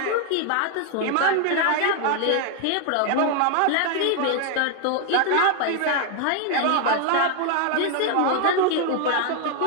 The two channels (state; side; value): different; both; correlation 0.00